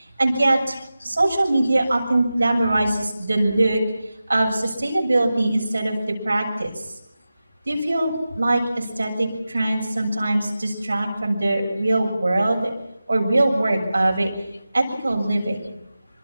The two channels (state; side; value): inverted; both; correlation -0.94